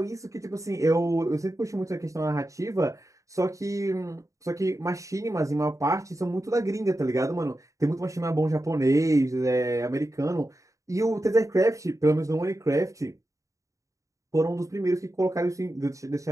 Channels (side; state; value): left; late; 0.16 ms